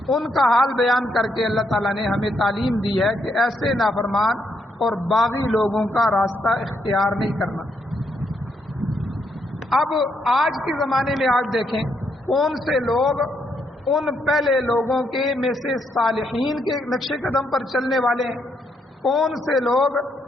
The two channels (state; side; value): normal; both; correlation 0.76